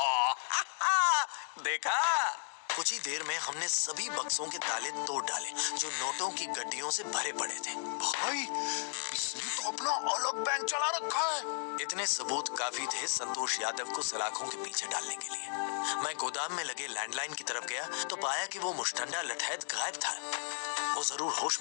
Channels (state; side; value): silent; right; digital silence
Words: देखा? कुछ ही देर में हमने सभी बक्सों के ताले तोड़ डाले जो नोटों की गड्डियों से भरे पड़े थे। भाई, इसने तो अपना अलग बैंक चला रखा है। इतने सबूत काफी थे संतोष यादव को सलाखों के पीछे डालने के लिए। मैं गोदाम में लगे लैंडलाइन की तरफ गया तो पाया कि वो मुश्तंडा लठैत गायब था। वो जरूर होश